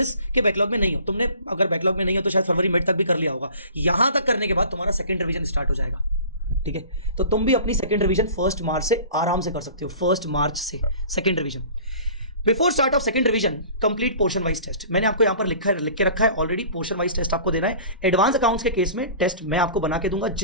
के बैकलॉग में नहीं हो। तुमने अगर बैकलॉग में नहीं हो तो शायद फरवरी मिड तक भी कर लिया होगा। यहां तक करने के बाद तुम्हारा सेकंड रिवीजन स्टार्ट हो जाएगा, ठीक है। तो तुम भी अपनी सेकंड रिवीजन 1 मार्च से आराम से कर सकते हो, 1 मार्च से second revision. Before start of second revision complete portion wise test. मैंने आपको यहाँ पर लिख के रखा है ऑलरेडी, पोर्शन वाइज टेस्ट आपको देना है। एडवांस अकाउंट्स के केस में टेस्ट मैं आपको बना के दूंगा,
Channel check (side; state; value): both; inverted; correlation -0.44